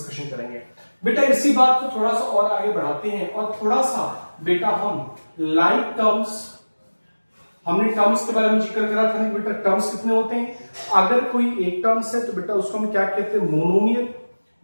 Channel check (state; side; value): inverted; both; correlation -1.00